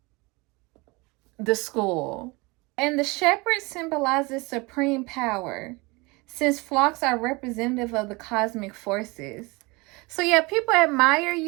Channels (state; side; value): quieter; left; 25.5 dB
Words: the school. And the shepherd symbolizes supreme power, since flocks are representative of the cosmic forces. So, yeah, people admire